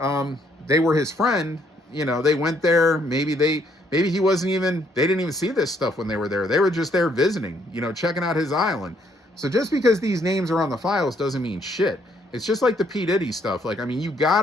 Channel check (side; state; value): both; normal; correlation 0.69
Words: they were his friend. They went there. Maybe he wasn't even. They didn't even see this stuff when they were there. They were just there visiting. Checking out his island. So just because these names are on the files doesn't mean shit. It's just like the P. Diddy stuff. Like, I mean, you